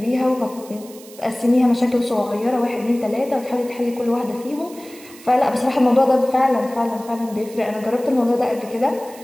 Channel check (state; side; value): noise; right; hiss, 20 dB below the sound